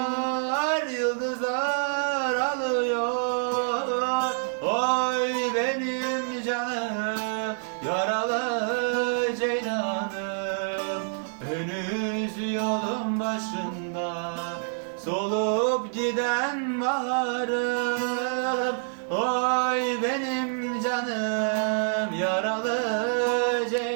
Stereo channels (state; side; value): silent; left; digital silence